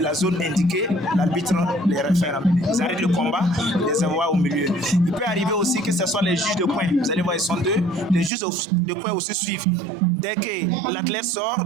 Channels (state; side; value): drops out; left; at 8.3 s